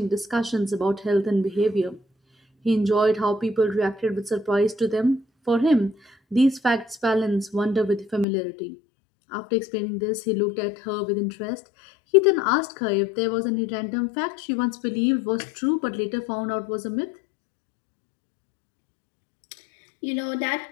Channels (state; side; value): drops out; right; at 8.2 s